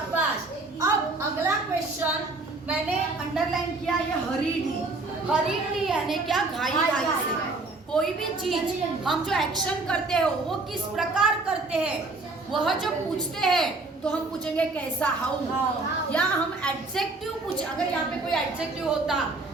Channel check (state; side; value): quieter; left; 3.4 dB